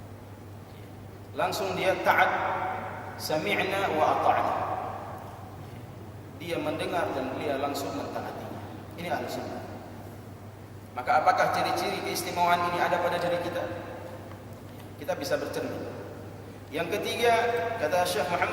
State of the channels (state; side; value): identical; both; correlation 1.00